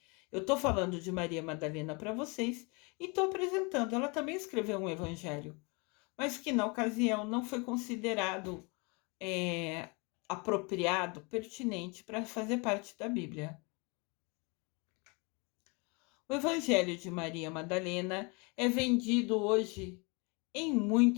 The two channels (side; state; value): right; quieter; 29.9 dB